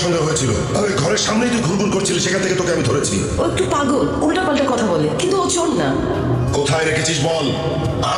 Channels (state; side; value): identical; both; correlation 1.00